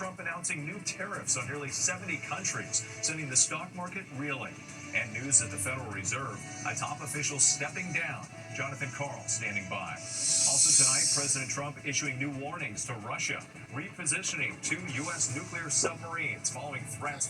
announcing new tariffs on nearly 70 countries, sending the stock market reeling. And news at the Federal Reserve, a top official stepping down. Jonathan Karl standing by. Also tonight, President Trump issuing new warnings to Russia, repositioning 2 U.S. nuclear submarines following threats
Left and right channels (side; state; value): both; identical; correlation 1.00